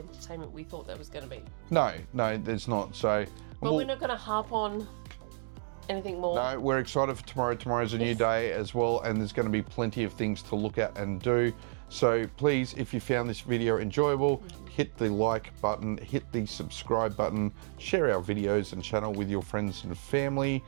we thought there was going to be. No, there's not. So, but we're not going to harp on anything more. No, we're excited for tomorrow. Tomorrow's a new day as well, and there's going to be plenty of things to look at and do. So please, if you found this video enjoyable, hit the like button, hit the subscribe button, share our videos and channel with your friends and family.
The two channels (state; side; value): silent; left; 57 dB below the other